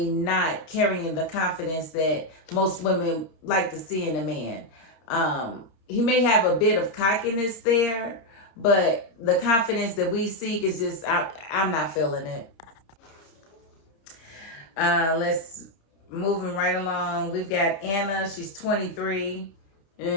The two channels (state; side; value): late; right; 30 ms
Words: not carrying the confidence that most women like to see in a man. He may have a bit of cockiness there, but the confidence that we seek is just, I'm not feeling it. Let's moving right along. We've got Anna. She's 23.